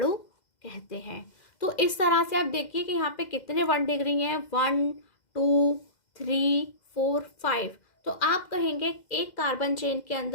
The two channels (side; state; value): right; late; 2.0 ms